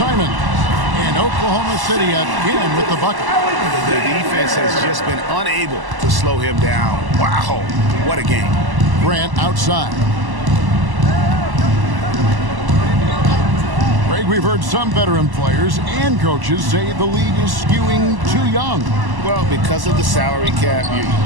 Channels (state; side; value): late; left; 1.1 ms